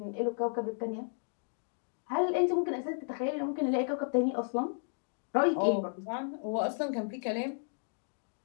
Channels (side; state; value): right; silent; digital silence